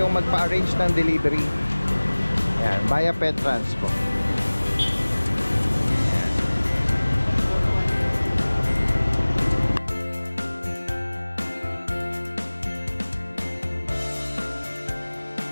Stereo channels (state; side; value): inverted; both; correlation -1.00